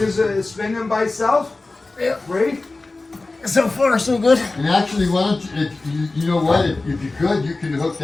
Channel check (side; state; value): right; quieter; 3.3 dB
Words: is spinning by itself? Yep. Right? So far, so good. And actually, why don't you, you know what, if you could, you can hook